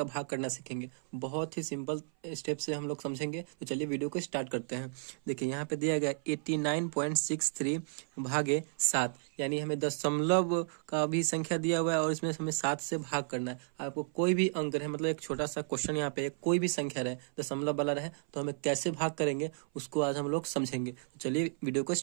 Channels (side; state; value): left; silent; 56 dB below the other